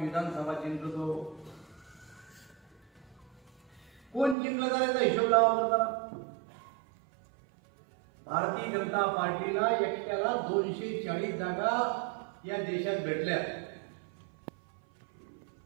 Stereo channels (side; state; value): left; drops out; at 4.4 s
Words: विधानसभा जिंकतो। कोण जिंकलं जाण्याचा हिशोब लावा जरा। भारतीय जनता पार्टीला एकट्याला 240 जागा या देशात भेटल्या।